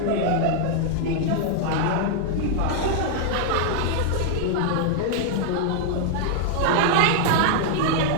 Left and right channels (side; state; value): both; different; correlation -0.01